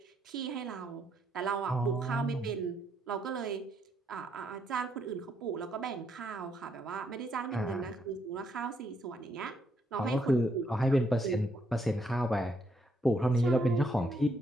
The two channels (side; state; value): both; normal; correlation 0.74